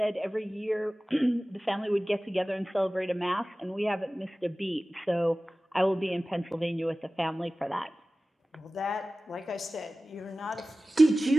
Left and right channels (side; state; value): both; normal; correlation 0.97